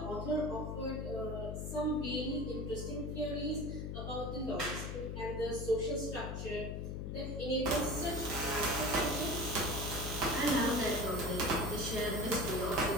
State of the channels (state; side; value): noise; left; hum, 4 dB below the sound